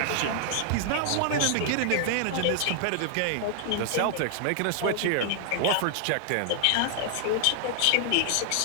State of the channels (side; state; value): both; different; correlation 0.00